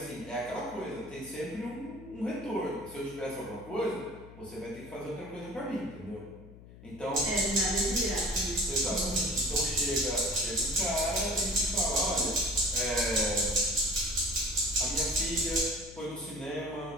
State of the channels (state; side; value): noise; left; hum, 18 dB below the sound